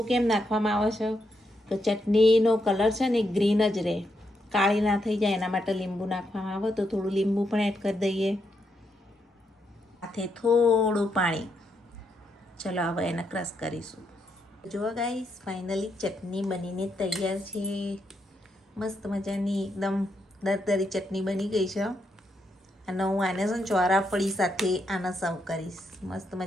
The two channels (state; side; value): normal; both; correlation 0.80